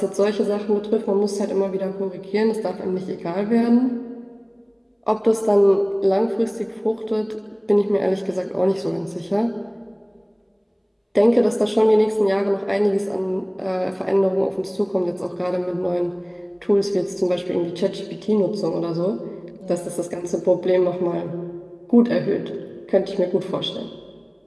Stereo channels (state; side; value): identical; both; correlation 1.00